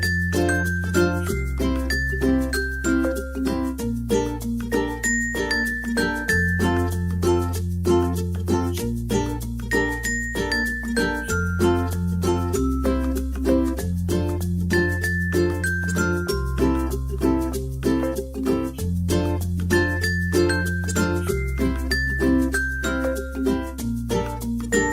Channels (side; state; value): both; identical; correlation 1.00